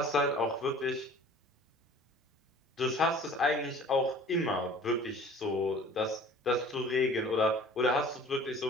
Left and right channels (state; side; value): normal; both; correlation 0.47